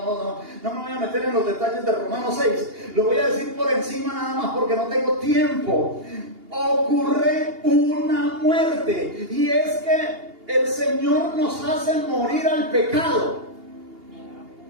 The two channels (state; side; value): late; left; 2.8 ms